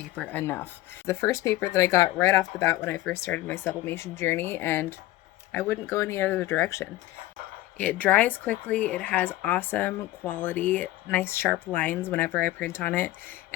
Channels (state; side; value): quieter; right; 16.5 dB